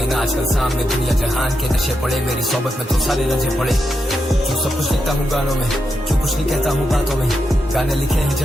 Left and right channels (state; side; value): normal; both; correlation 0.85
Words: आजकल सामने दुनिया जहान के नशे पड़े, मेरी सोबत में तो सारे रजे पड़े। क्यों सब कुछ लिखता हूँ गानों में, क्यों कुछ नहीं कहता हूँ बातों में, गाने लिखे हैं